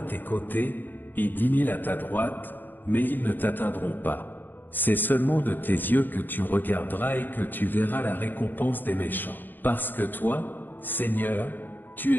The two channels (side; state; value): right; late; 0.090 ms